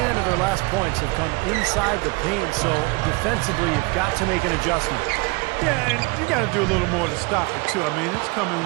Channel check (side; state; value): left; quieter; 26.9 dB